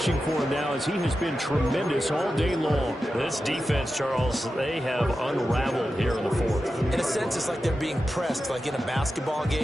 for him now as he has been tremendous all day long. This defense, Charles, they have unraveled here in the 4th. In a sense, it's like they're being pressed like in a basketball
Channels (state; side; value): normal; both; correlation 0.91